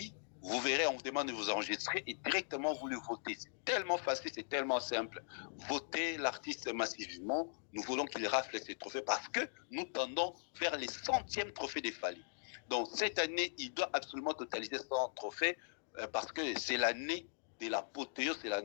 Vous verrez, on vous demande de vous enregistrer et directement vous le votez. C'est tellement facile, c'est tellement simple. Votez l'artiste massivement. Nous voulons qu'il rafle ses trophées parce que nous tendons vers les 100e trophées des Fally. Donc cette année, il doit absolument totaliser 100 trophées parce que c'est l'année de l'apothéose, c'est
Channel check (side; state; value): right; silent; digital silence